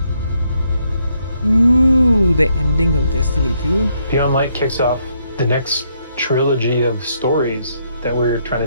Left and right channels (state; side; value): inverted; both; correlation -0.74